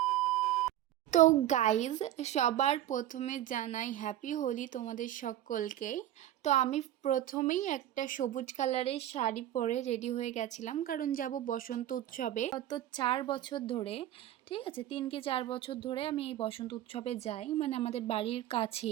তো গাইজ সবার প্রথমে জানাই হ্যাপি হোলি তোমাদের সকলকে। তো আমি প্রথমেই একটা সবুজ কালারের শাড়ি পরে রেডি হয়ে গেছিলাম, কারণ যাব বসন্ত উৎসবে। গত 4 বছর ধরে, ঠিক আছে 3 কি 4 বছর ধরে আমি এই বসন্ত উৎসবে যাই, মানে আমাদের বাড়ির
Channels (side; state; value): left; quieter; 12.7 dB